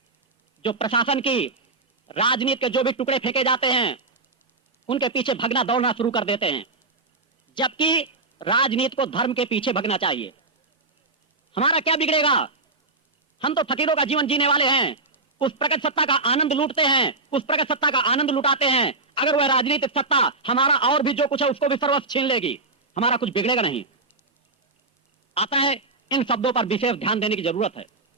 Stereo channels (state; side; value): quieter; left; 3.3 dB